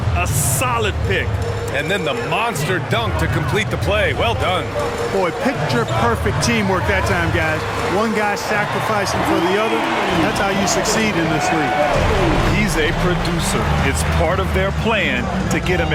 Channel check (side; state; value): both; identical; correlation 1.00